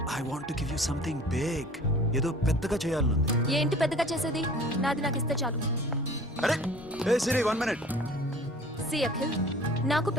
I want to give you something big. ఏదో పెద్దగా చేయాలనుంది. ఏంటి పెద్దగా చేసేది? నాది నాకు ఇస్తే చాలు. అరే ఏ సిరి, 1 minute. సి అఖిల్, నాకు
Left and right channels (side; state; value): both; normal; correlation 0.46